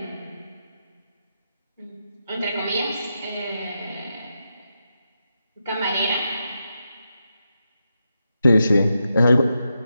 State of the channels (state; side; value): inverted; both; correlation -0.86